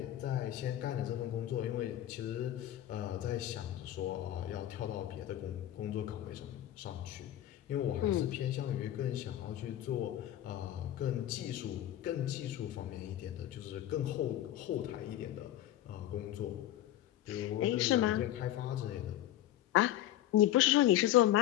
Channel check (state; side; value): quieter; right; 13.1 dB